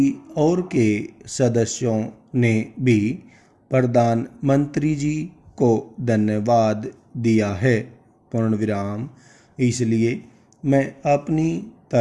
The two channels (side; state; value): both; identical; correlation 1.00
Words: ओर के सदस्यों ने भी प्रधानमंत्री जी को धन्यवाद दिया है। पूर्ण विराम। इसलिए मैं अपनी